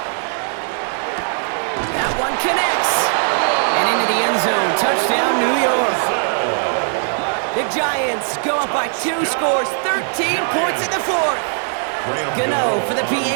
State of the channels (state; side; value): silent; left; 57 dB below the other